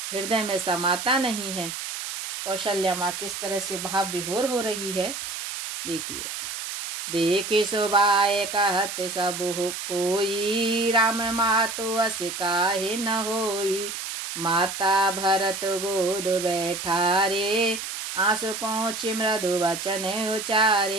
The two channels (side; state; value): right; noise; hiss, 6 dB below the sound